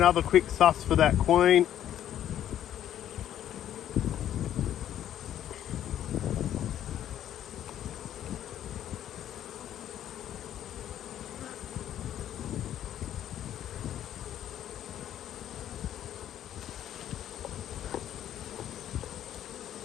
quick suss for that queen.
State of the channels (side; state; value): right; quieter; 11.1 dB